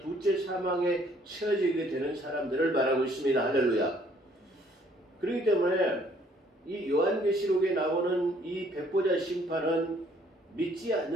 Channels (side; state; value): both; normal; correlation 0.62